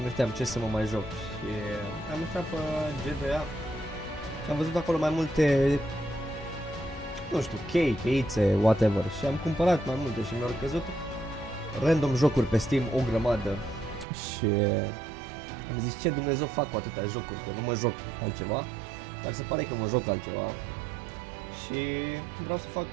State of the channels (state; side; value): drops out; left; at 14.1 s